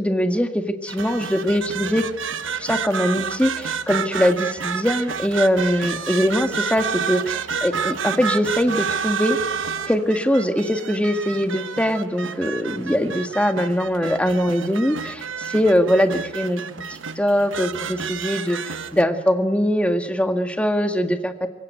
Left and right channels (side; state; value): both; normal; correlation 0.80